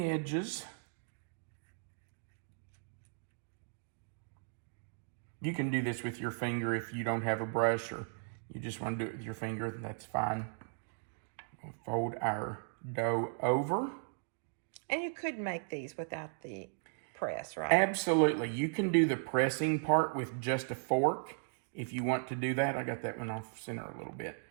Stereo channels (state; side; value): silent; left; digital silence